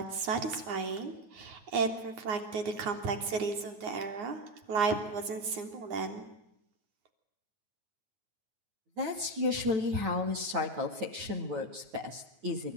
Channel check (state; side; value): late; left; 9.7 ms